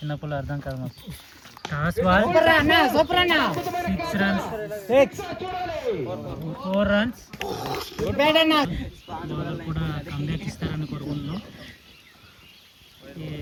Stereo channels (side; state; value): both; identical; correlation 1.00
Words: పుల్ల అర్థం కాదు మాకు. Toss ball. 6 runs. 4 runs. Bowler కూడా కంబ్యాక్ ఇస్తారని కోరుకుంటున్నాం.